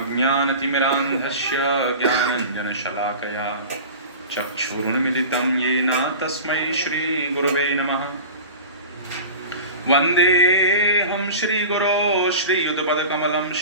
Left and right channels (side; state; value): both; inverted; correlation -0.34